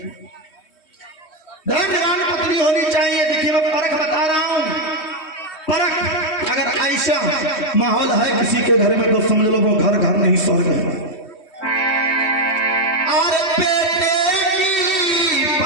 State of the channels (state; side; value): late; right; 3.2 ms